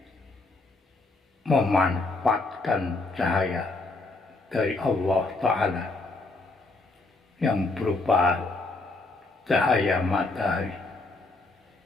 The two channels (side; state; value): right; quieter; 3.3 dB